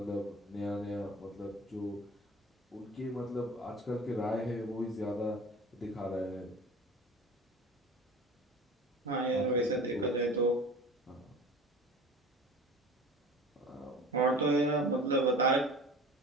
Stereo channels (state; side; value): normal; both; correlation 0.39